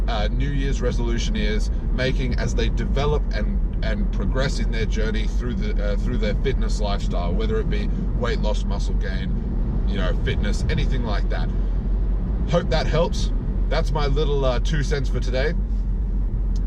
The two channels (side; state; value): both; identical; correlation 1.00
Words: New Year's resolutioneers, making as they develop and progress in their journey through their fitness lifestyle, whether it be weight loss, muscle gain, you know, fitness, anything like that. Hope that helps. That's my little 2 cents for today,